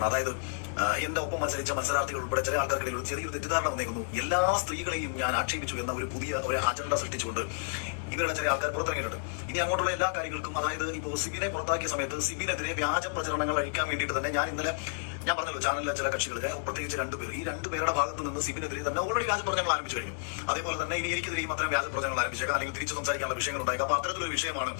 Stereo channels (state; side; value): silent; right; 57 dB below the other